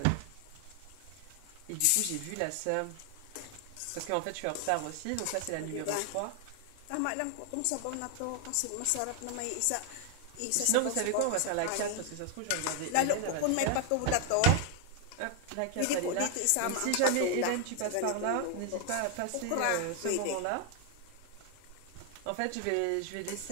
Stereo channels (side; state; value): both; different; correlation 0.00